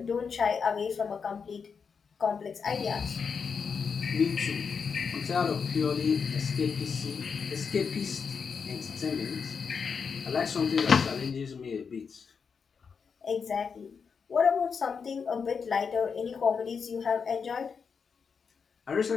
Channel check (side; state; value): right; quieter; 5.9 dB